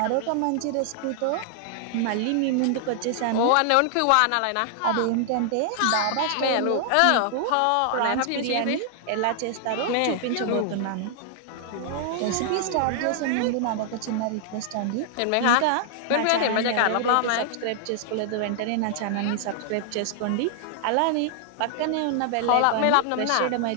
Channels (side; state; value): both; different; correlation 0.00